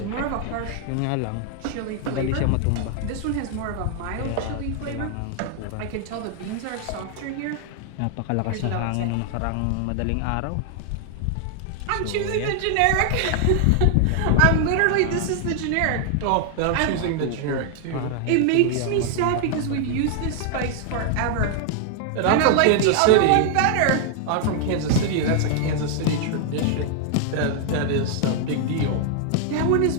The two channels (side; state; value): both; different; correlation 0.00